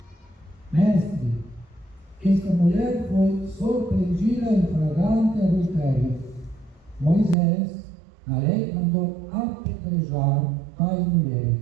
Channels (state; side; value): drops out; left; at 7.4 s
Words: Mestre, esta mulher foi surpreendida em flagrante adultério. Moisés, na lei, mandou apedrejar tais